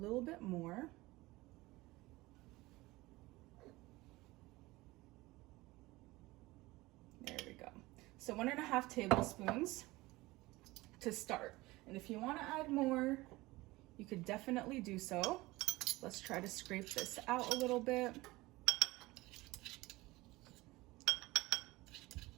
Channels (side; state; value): left; quieter; 20.3 dB